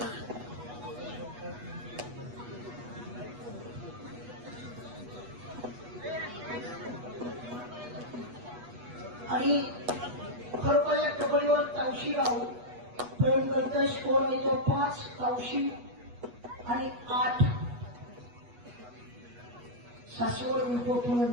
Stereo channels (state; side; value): late; left; 8.2 ms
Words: आणि खरोखर या कबड्डीवर तावशी गाव प्रेम करतोय. स्कोर आहे तो 5 तावशी आणि 8 सासवड